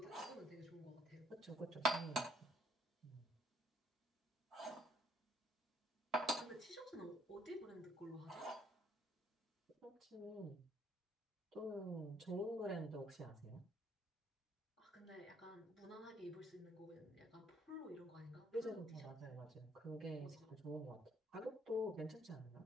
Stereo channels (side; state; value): both; normal; correlation 0.66